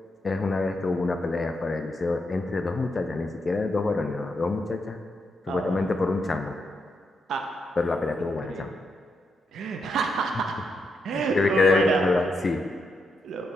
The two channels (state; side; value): normal; both; correlation 0.82